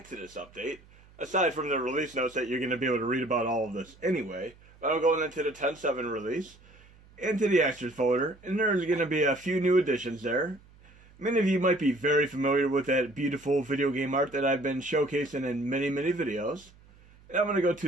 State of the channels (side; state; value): right; noise; hum, 26 dB below the sound